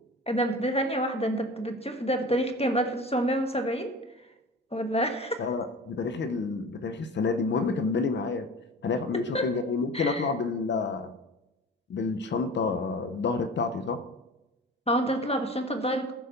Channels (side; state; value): both; normal; correlation 0.37